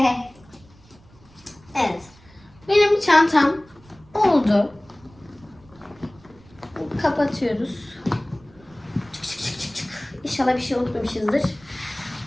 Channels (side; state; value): right; noise; rumble, 26 dB below the sound